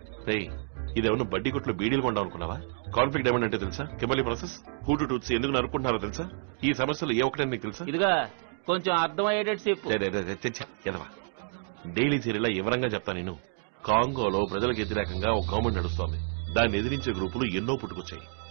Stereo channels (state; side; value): silent; left; digital silence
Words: ఇదేమన్నా బడ్డీ కొట్లో బీడీలు కొండాం అనుకున్నావా? కాన్ఫ్లిక్ట్ డైమండ్ అంటే తెలుసా? కెమలీ ప్రాసెస్, హూటు టూత్స్ ఎందుకు నరుకుంటున్నారో తెలుసా? ఈ సమస్యలు ఏ ఒక్కటని నీకు తెలుసా? ఇదిగా కొంచెం అర్థమయ్యేటట్టు చెప్పు. డైలీ సీరియల్ వివరంగా చెప్తా. నేను కాంగోలో ప్రజలకు వ్యతిరేకంగా ఒక గవర్నమెంట్ నడుస్తోంది. దాన్ని ఎదిరించే గ్రూపులు ఎన్నో పుట్టుకొచ్చాయి.